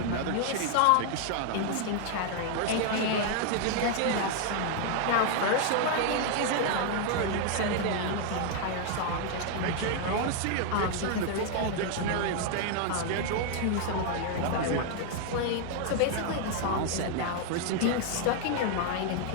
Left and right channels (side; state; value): both; different; correlation 0.00